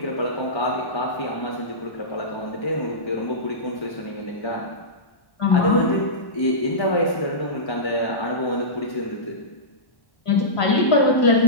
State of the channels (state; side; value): late; right; 1.1 ms